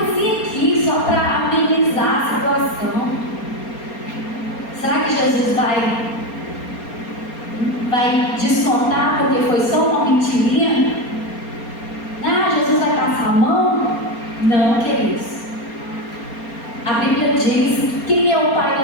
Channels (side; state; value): right; late; 4.3 ms